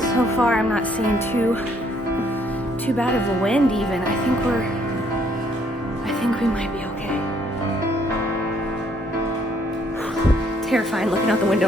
So far I'm not seeing too bad of a wind even. I think we might be okay. Terrifying looking out the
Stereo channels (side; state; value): both; normal; correlation 0.66